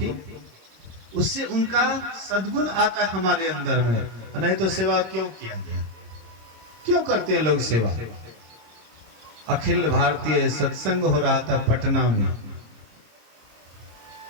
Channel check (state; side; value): late; left; 26 ms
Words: उससे उनका सद्गुण आता है हमारे अंदर में। नहीं तो सेवा क्यों किया गया, क्यों करते हैं लोग सेवा। अखिल भारतीय सत्संग हो रहा था पटना में,